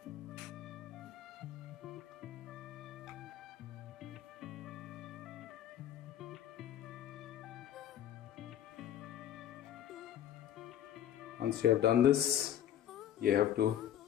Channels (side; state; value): right; quieter; 10.9 dB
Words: Once you have done this, you have to